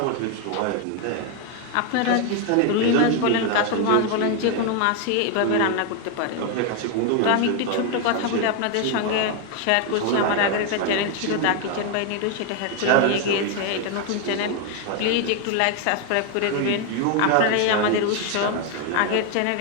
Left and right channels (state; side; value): different; both; correlation 0.01